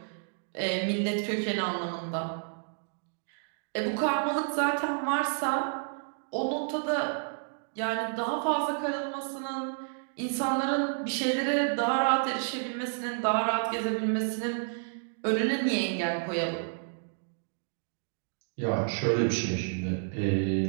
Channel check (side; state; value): left; silent; digital silence